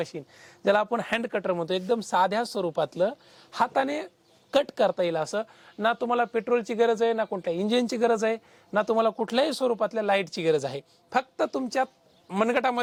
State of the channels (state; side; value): identical; both; correlation 1.00